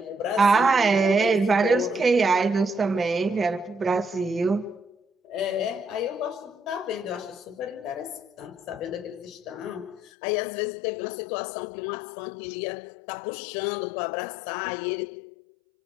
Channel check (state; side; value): drops out; right; at 10.0 s